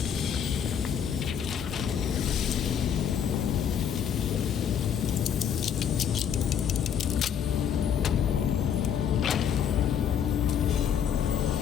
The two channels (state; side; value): quieter; right; 8.3 dB